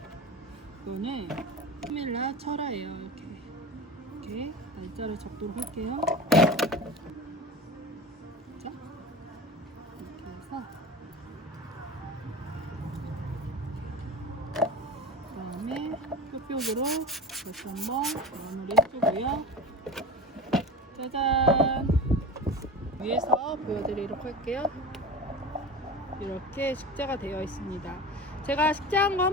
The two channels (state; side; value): normal; both; correlation 0.31